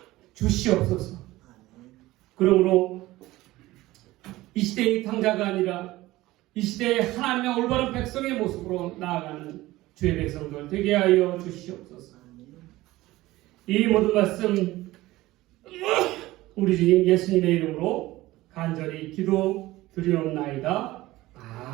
주시옵소서. 그러므로 이 시대의 당자가 아니라 이 시대에 하나님의 올바른 백성의 모습으로 나아가는 주의 백성들 되게 하여 주시옵소서. 이 모든 말씀 우리 주님 예수님의 이름으로 간절히 기도 드리옵나이다.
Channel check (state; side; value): quieter; left; 17.8 dB